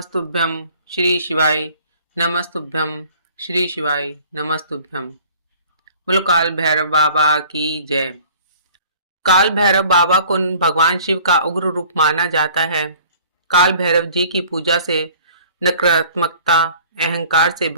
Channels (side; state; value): both; inverted; correlation -0.51